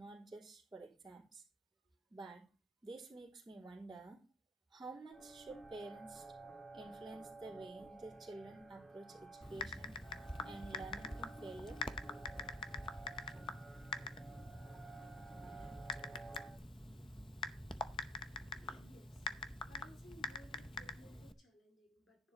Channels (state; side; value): normal; both; correlation 0.47